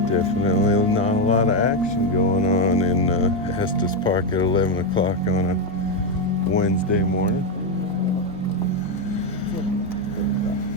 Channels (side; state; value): both; normal; correlation 0.06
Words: definitely not a lot of action going on in Estes Park at 11 o'clock on a Wednesday morning.